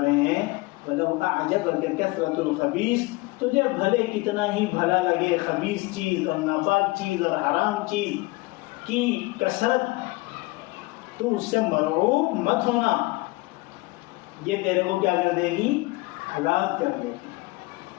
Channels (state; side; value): quieter; right; 22.6 dB